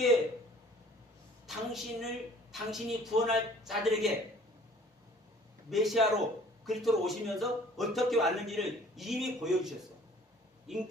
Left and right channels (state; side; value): normal; both; correlation 0.52